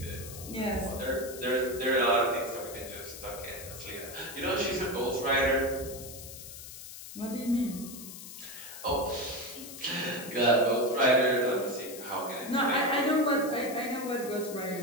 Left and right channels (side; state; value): left; noise; hiss, 13 dB below the sound